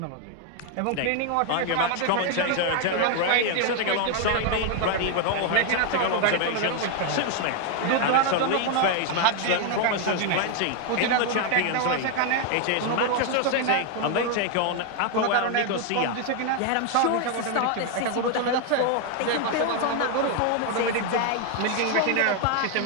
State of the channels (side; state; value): both; different; correlation 0.01